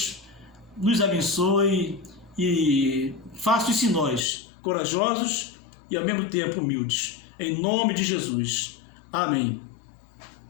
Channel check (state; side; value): drops out; right; at 4.2 s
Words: nos abençoe e faça isso em nós, corajosos e ao mesmo tempo humildes. Em nome de Jesus. Amém.